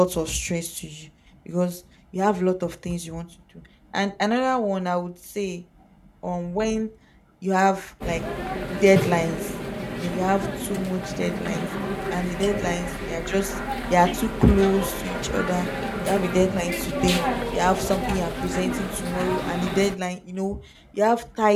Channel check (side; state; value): both; identical; correlation 1.00